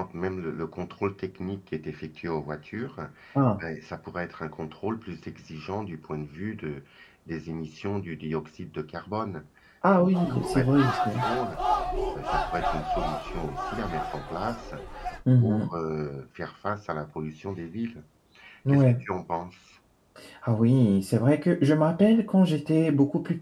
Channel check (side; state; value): both; identical; correlation 1.00